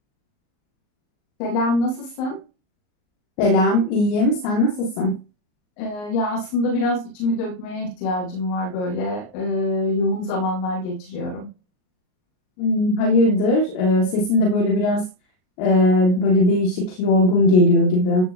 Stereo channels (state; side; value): late; right; 38 ms